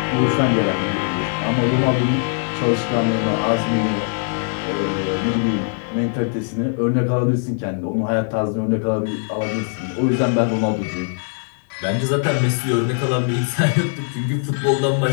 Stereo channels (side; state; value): right; silent; 64 dB below the other